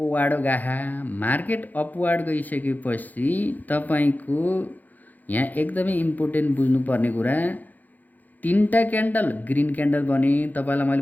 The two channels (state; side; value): late; right; 0.082 ms